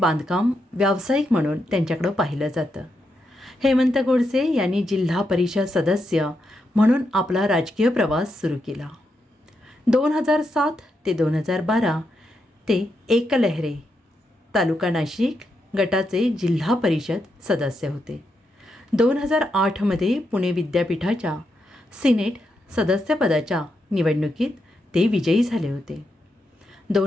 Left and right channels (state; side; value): normal; both; correlation 0.83